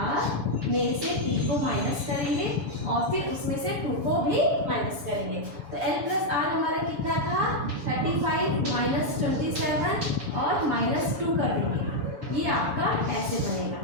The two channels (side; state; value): left; late; 7.0 ms